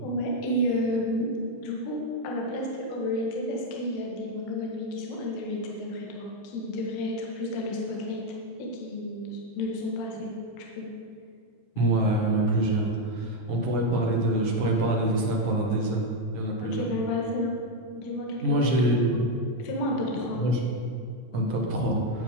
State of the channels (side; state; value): right; late; 9.8 ms